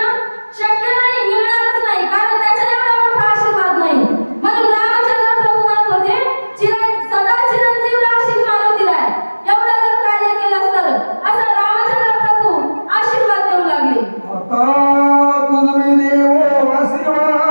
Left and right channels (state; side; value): inverted; both; correlation -1.00